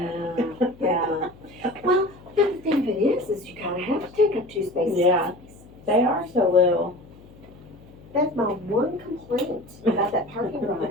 Yeah. Well, the thing of it is you kind of have to take up 2 spaces. Yeah. They are so little. That's my one complaint about that parking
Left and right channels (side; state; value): left; noise; hum, 22 dB below the sound